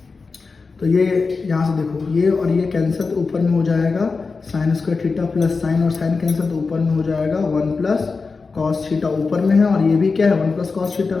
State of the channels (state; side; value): quieter; right; 4.4 dB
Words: तो ये यहाँ से देखो ये और ये कैंसिल तो ऊपर में हो जाएगा sign square theta plus sign और साइन कैंसिल तो ऊपर में हो जाएगा 1 प्लस कॉस थीटा ऊपर में है और ये भी क्या है 1 प्लस कॉस थीटा,